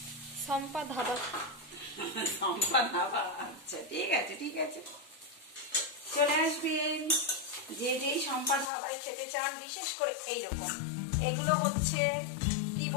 সম্পা ধাবা। সম্পা ধাবা, আচ্ছা ঠিক আছে ঠিক আছে, চলে আসবেন যে যেই সম্পা ধাবায় খেতে চান। বিশেষ করে এইরকম, এগুলো হচ্ছে কি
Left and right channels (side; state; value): right; drops out; at 8.7 s